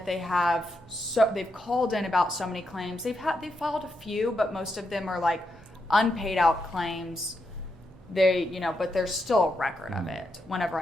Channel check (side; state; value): both; normal; correlation 0.83